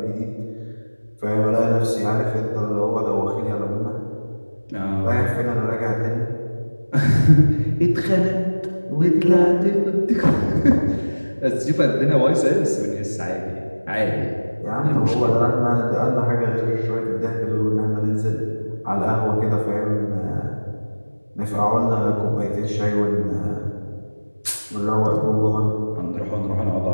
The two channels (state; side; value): inverted; both; correlation -1.00